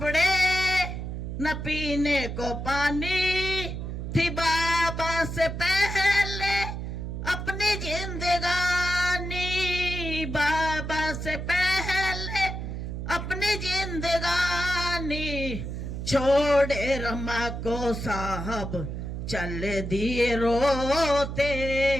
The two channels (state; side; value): noise; right; hum, 5 dB below the sound